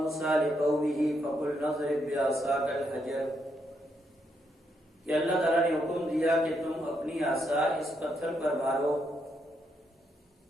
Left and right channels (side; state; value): both; normal; correlation 0.78